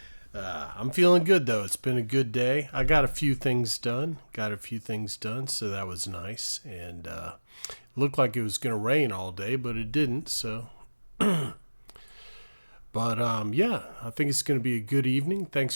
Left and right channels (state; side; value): inverted; both; correlation -1.00